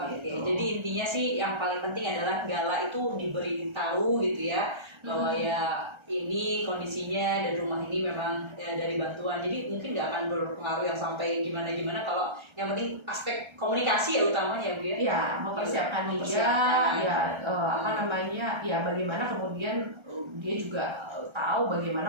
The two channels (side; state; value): left; late; 1.3 ms